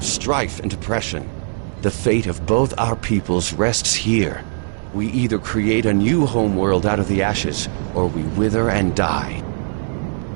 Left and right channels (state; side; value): silent; left; digital silence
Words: strife and oppression. The fate of both our peoples rests here. We either create a new homeworld out of the ashes, or we wither and die.